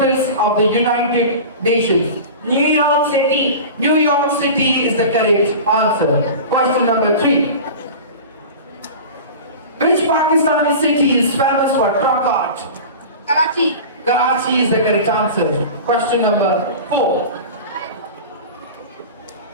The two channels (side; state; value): both; inverted; correlation -0.34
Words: of the United Nations? New York City. New York City is the correct answer. Question number 3. Which Pakistani city is famous for truck art? Karachi. Karachi is the correct answer. Question number 4.